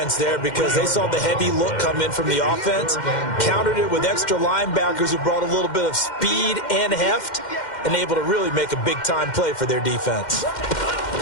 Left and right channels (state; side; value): late; right; 2.1 ms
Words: there because they saw the heavy look come in from the offense, countered it with extra linebackers who brought a little bit of speed and heft, and able to really make a big-time play for their defense.